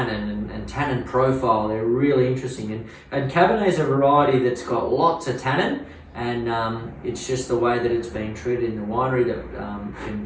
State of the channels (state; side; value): identical; both; correlation 1.00